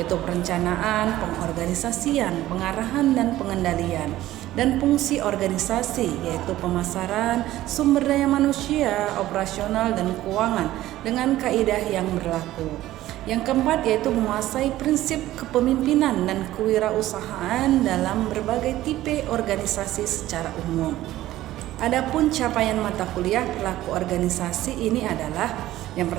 perencanaan, pengorganisasian, pengarahan, dan pengendalian. Dan fungsi organisasi, yaitu pemasaran, sumber daya manusia, operasional, dan keuangan dengan kaidah yang berlaku. Yang keempat, yaitu menguasai prinsip kepemimpinan dan kewirausahaan dalam berbagai tipe organisasi secara umum. Adapun capaian mata kuliah Perilaku Organisasi ini adalah yang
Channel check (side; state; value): left; quieter; 15.0 dB